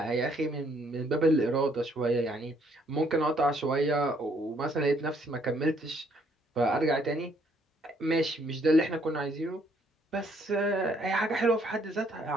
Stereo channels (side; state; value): both; normal; correlation 0.67